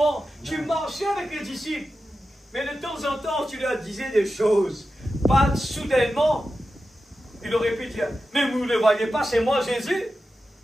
Tu marchais avec les disciples. Mais de temps en temps, tu leur disais des choses. Pas soudainement. Il aurait pu dire, mais vous ne le voyez pas, c'est moi Jésus.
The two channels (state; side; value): normal; both; correlation 0.92